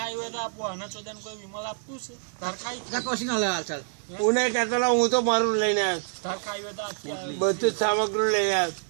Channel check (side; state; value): left; silent; digital silence